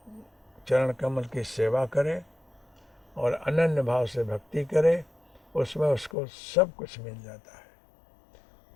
चरण कमल की सेवा करे और अनन्य भाव से भक्ति करे, उसमें उसको सब कुछ मिल जाता है।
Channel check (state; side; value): drops out; right; at 6.2 s